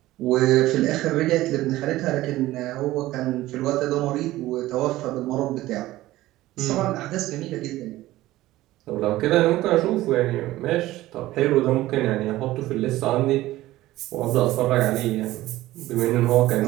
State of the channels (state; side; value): quieter; left; 16.5 dB